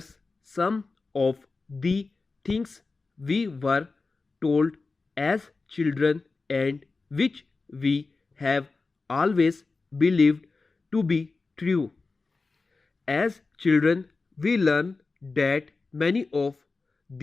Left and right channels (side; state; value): right; quieter; 3.9 dB